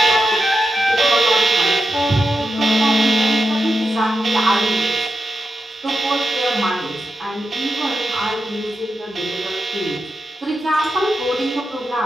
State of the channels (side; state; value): both; normal; correlation 0.88